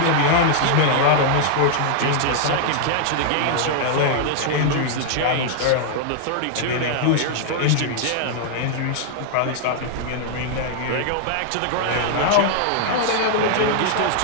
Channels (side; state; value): both; different; correlation -0.01